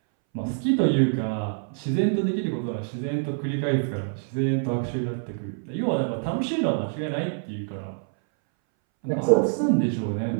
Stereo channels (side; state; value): left; silent; 61 dB below the other